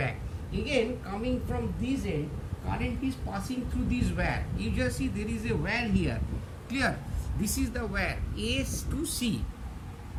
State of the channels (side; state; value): both; identical; correlation 1.00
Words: Again, coming from this end, current is passing through this wire. You just see there is a wire here. Clear? This is the wire A to C.